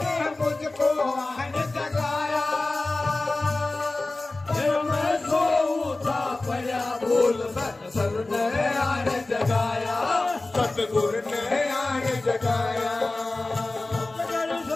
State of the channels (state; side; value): quieter; right; 3.1 dB